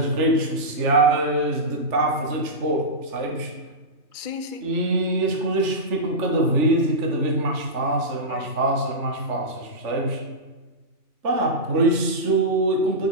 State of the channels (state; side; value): late; left; 3.4 ms